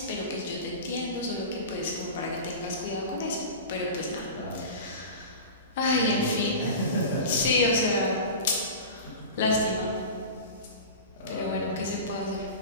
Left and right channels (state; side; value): inverted; both; correlation -0.31